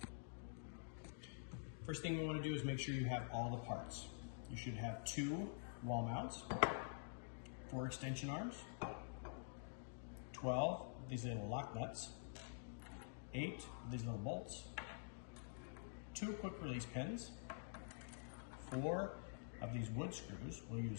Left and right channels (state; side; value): silent; right; digital silence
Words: First thing we want to do is make sure you have all the parts. You should have 2 wall mounts, 4 extension arms, 12 of these little lock nuts, 8 of these little bolts, 2 quick release pins, 4 of these wood screws we'll